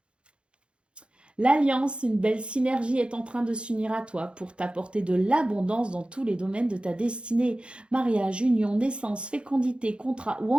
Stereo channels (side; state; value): left; late; 0.057 ms